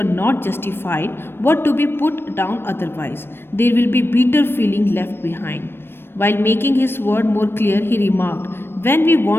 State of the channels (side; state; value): right; late; 0.11 ms